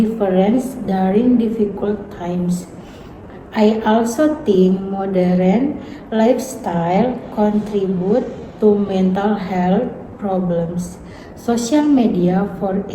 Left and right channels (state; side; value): identical; both; correlation 1.00